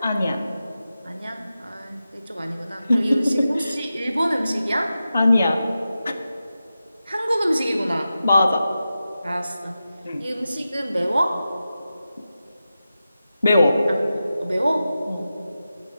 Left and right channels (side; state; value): both; inverted; correlation -0.92